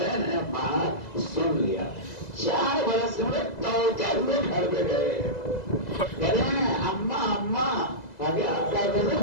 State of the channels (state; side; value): late; right; 2.0 ms